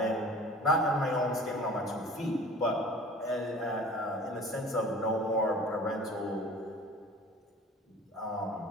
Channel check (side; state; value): both; normal; correlation 0.44